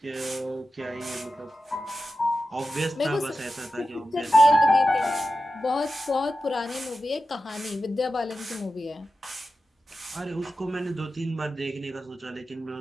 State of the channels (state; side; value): normal; both; correlation 0.92